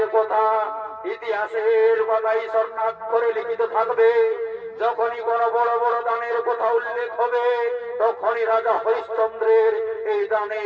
কথা ইতিহাসের পাতায় স্বর্ণাক্ষরে লিখিত থাকবে। যখনই কোনো বড় বড় দানের কথা উল্লেখ হবে, তখনই রাজা হরিশ্চন্দ্রের এই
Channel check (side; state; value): both; identical; correlation 1.00